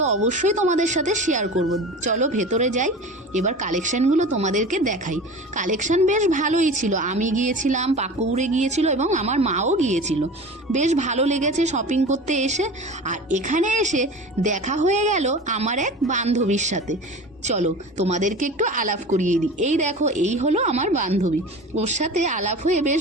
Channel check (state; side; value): normal; both; correlation 0.35